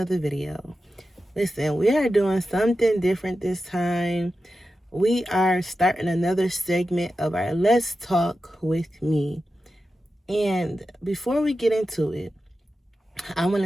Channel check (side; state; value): both; normal; correlation 0.92